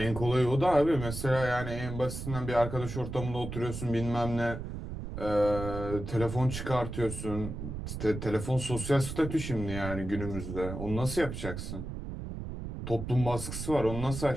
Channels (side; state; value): right; noise; rumble, 7 dB below the sound